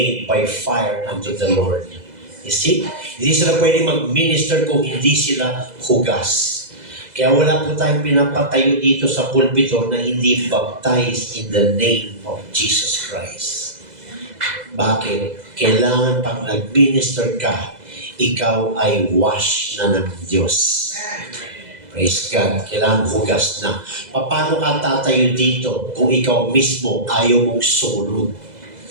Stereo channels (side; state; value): left; late; 2.0 ms